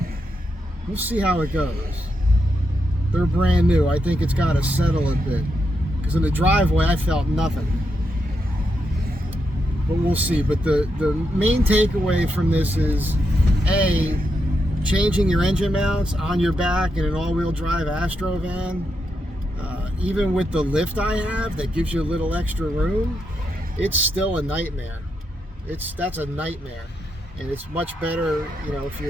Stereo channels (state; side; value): normal; both; correlation 0.83